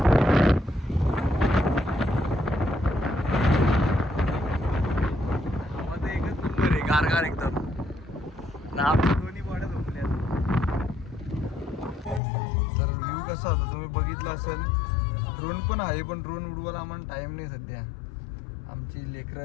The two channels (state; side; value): drops out; right; at 12.2 s